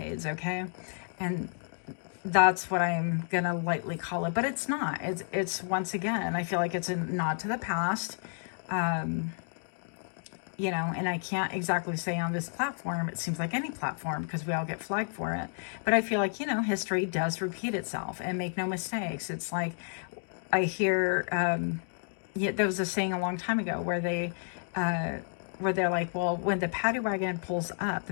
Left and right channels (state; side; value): silent; right; digital silence